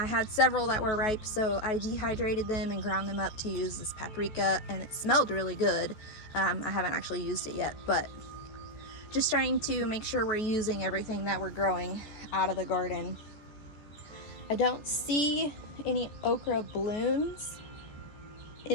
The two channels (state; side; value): late; right; 14 ms